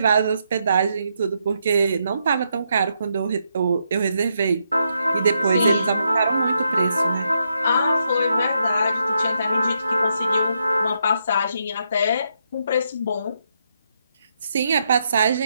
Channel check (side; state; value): both; inverted; correlation -0.79